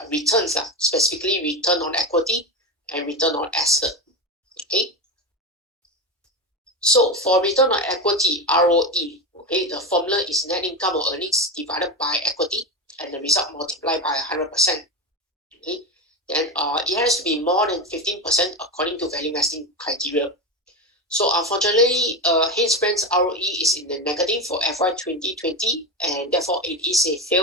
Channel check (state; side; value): normal; both; correlation 0.17